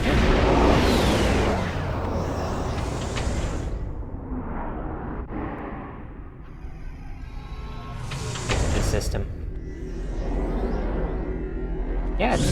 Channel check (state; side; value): identical; both; correlation 1.00